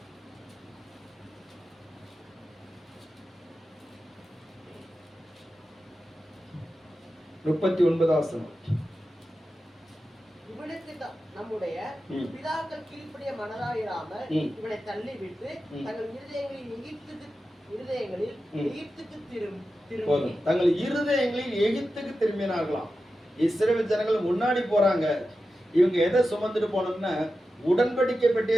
7 39 வசனம். இவனுக்கு நம்முடைய பிதாக்கள் கீழ்ப்படிய மனதாயிராமல் இவனை தள்ளிவிட்டு தங்கள் இருதயங்களில் எகிப்துக்கு திரும்பினார்களாம். இஸ்ரவேல் ஜனங்கள் முன்னாடி போறாங்க. இவங்க எதை சுமந்துட்டு போனோம்னா உடன்படிக்கை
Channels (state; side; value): normal; both; correlation 0.92